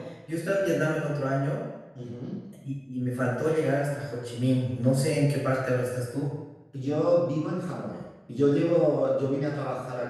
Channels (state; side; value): identical; both; correlation 1.00